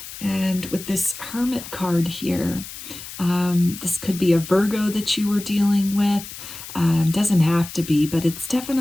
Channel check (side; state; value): left; noise; hiss, 12 dB below the sound